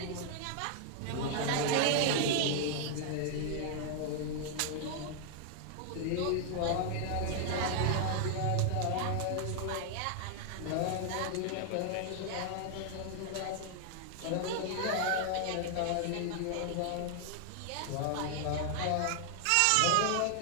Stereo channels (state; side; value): different; both; correlation 0.00